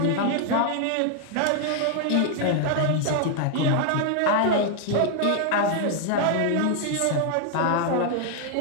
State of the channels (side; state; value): both; different; correlation 0.00